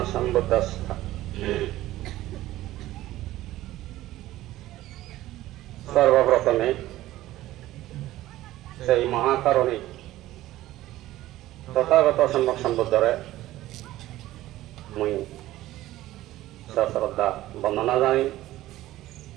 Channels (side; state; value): left; quieter; 15.6 dB